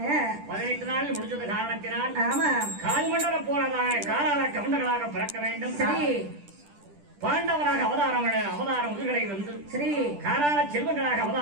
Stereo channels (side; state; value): left; late; 10 ms